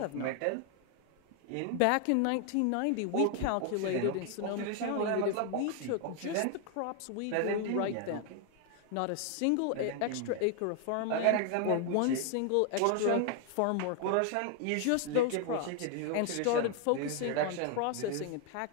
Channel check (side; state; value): both; different; correlation 0.01